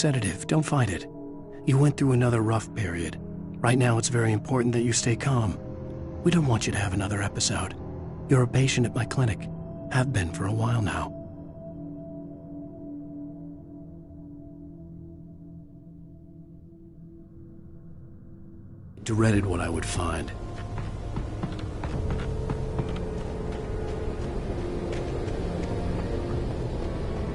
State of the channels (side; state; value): both; identical; correlation 1.00